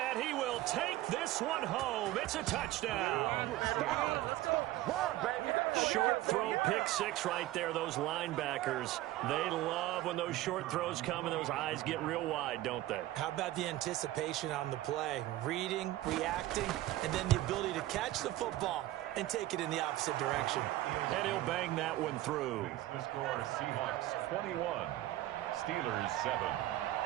he will take this one home. It's a touchdown. Short throw, pick six right there. Those linebackers, they love when those short throws come and those eyes get real wide, don't they? How about the anticipation on the play? Reading, reacting, and then the ability to catch the football and take it in the opposite direction. And he'll bang that one through. The score, Seahawks 21, Steelers 7.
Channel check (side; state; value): left; quieter; 15.9 dB